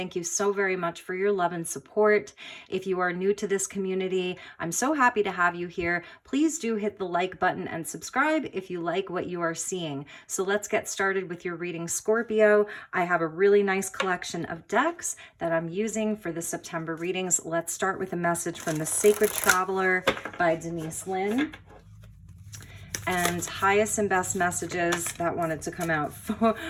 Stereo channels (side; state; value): both; identical; correlation 1.00